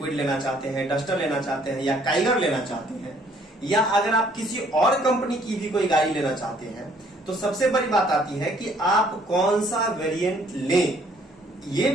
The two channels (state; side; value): normal; both; correlation 0.62